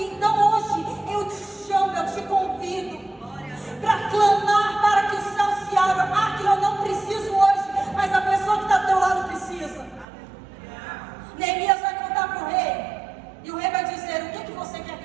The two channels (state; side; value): drops out; left; at 10.1 s